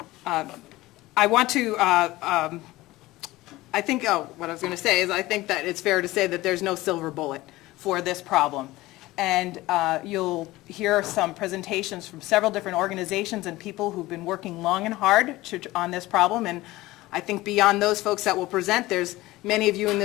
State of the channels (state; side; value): quieter; right; 18.5 dB